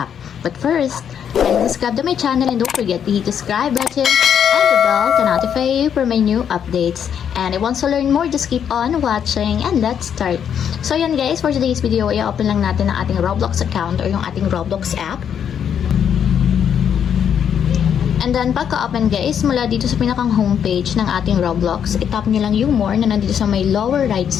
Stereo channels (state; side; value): quieter; right; 8.4 dB